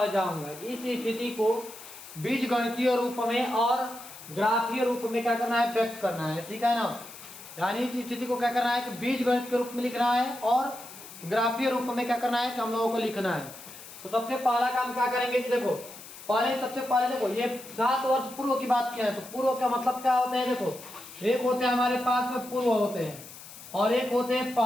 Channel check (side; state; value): left; noise; hiss, 16 dB below the sound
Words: जाऊंगा। इस स्थिति को बीजगणितीय रूप में और ग्राफीय रूप में क्या करना है, व्यक्त करना है। ठीक है ना। यानी इस स्थिति को क्या करना है कि बीजगणित के रूप में लिखना है और ग्राफीय रूप में क्या करना है कि हम लोगों को लिखना है। तो सबसे पहला काम क्या करेंगे कि देखो, सबसे पहले देखो, ये 7 वर्ष पूर्व की बात किया है। तो पूर्व का मतलब क्या होता है? देखो, एक होते हैं हमारे पास में पूर्व होते हैं और एक होते हैं